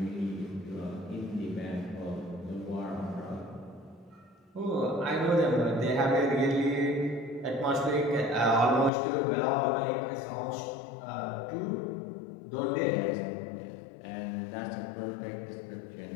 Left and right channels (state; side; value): drops out; right; at 8.9 s